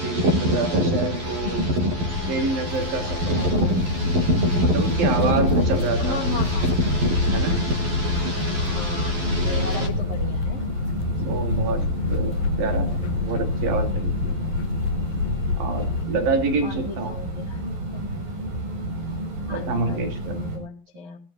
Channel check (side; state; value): left; late; 11 ms